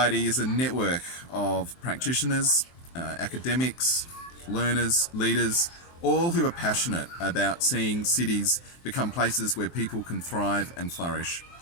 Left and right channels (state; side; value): late; right; 23 ms